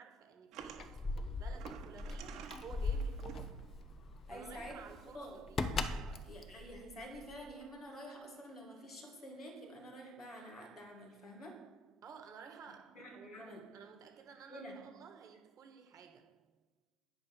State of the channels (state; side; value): normal; both; correlation 0.69